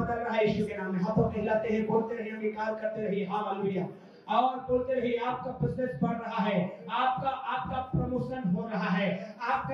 रहा है यीशु के नाम में। हाथों को हिलाते हैं, बोलते रहिए, अंगीकार करते रहिए। हालेलुया। और बोलते रहिए, आपका बिजनेस बढ़ रहा है, आपका प्रमोशन हो रहा है, आपका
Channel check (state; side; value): identical; both; correlation 1.00